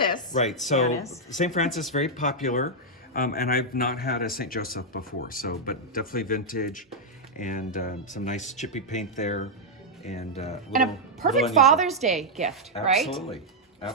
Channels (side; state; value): both; normal; correlation -0.04